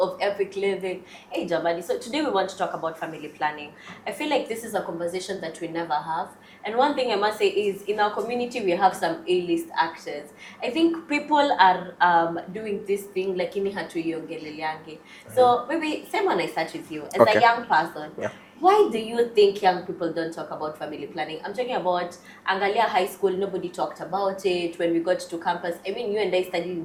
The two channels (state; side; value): identical; both; correlation 1.00